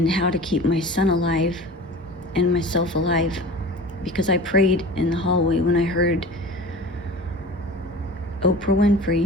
how to keep my son alive and myself alive, because I prayed in the hallway when I heard Oprah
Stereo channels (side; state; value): both; normal; correlation 0.38